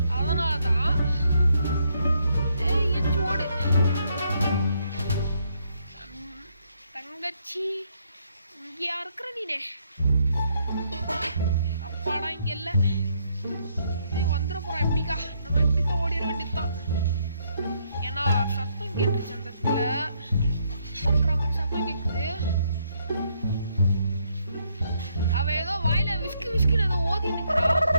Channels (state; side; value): inverted; both; correlation -0.73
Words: அதனாலதான் எச்சு ஓடு. தங்கச்சி இங்கயா இருக்கிற நீனே? அப்பாடா இங்க இல்ல. வந்துட போறான். எப்படிக்கா நம்ம எப்படிக்கா ஓடிட வேண்டியதுதான். ஏன்னா சத்தம் கேட்டுருச்சு அந்த இடத்துல.